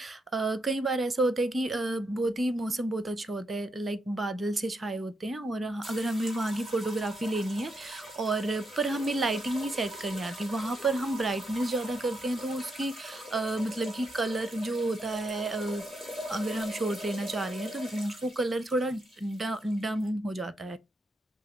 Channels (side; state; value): both; normal; correlation 0.81